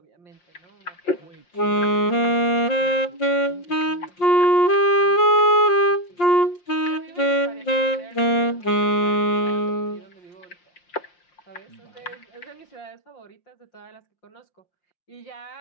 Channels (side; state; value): right; late; 5.7 ms